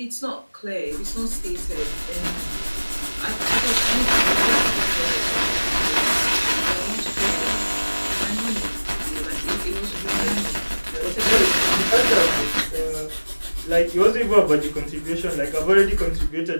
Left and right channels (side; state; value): both; inverted; correlation -1.00